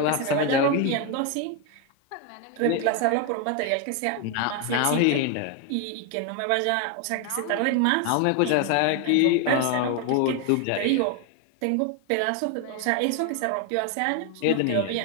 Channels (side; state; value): both; different; correlation 0.01